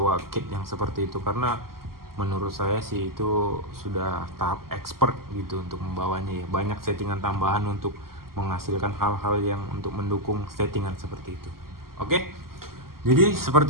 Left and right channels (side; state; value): left; late; 0.92 ms